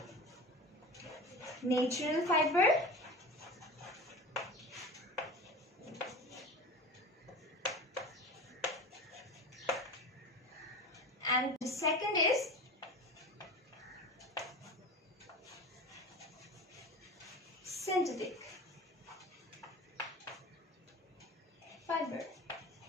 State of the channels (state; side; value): normal; both; correlation 0.33